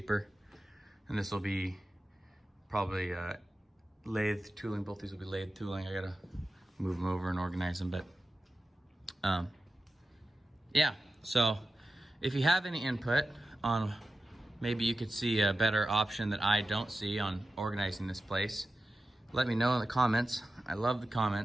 And this will be probably lathe tooling. Both these will be lathe tooling. I gotta move them over and organize them, but yeah. So if you have any input on, maybe you could see a better option that I don't see on organizing this place, let me know in the comments. I love the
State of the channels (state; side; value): normal; both; correlation 0.93